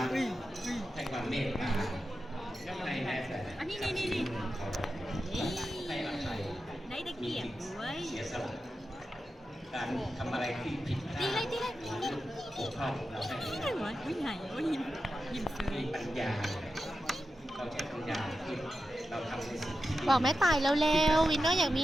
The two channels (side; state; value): both; normal; correlation 0.91